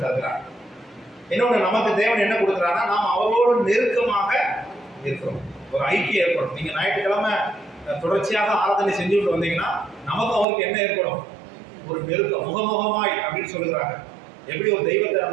தருகிறார். இன்னொன்று, நமக்கு தேவன் என்ன கொடுக்குறாருன்னா நாம் அவரோடு நெருக்கமாக இருக்கிறோம், ஒரு ஐக்கியம் ஏற்படும். நீங்க ஞாயிற்றுக்கிழமை தொடர்ச்சியாக ஆராதனை செஞ்சுட்டு வந்தீங்கன்னா நமக்கு அவருக்கு என்ன ஏற்படும்? ஒரு நெருக்கம், முகமுகமாய் அப்படின்னு சொல்லுகிறாங்க. எப்படி ஒரு தெய்வத்தை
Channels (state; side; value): drops out; left; at 10.5 s